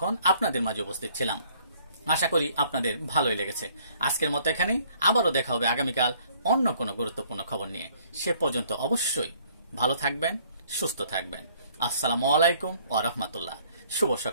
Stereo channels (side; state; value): both; inverted; correlation -0.61